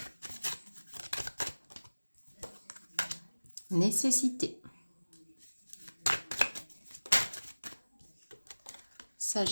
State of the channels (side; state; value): both; inverted; correlation -1.00